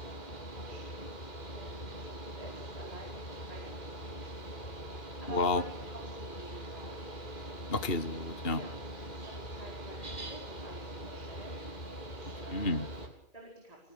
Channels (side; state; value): right; late; 2.4 ms